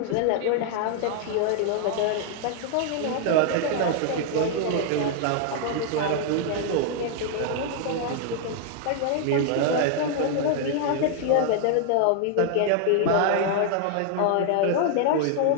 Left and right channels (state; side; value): different; both; correlation 0.00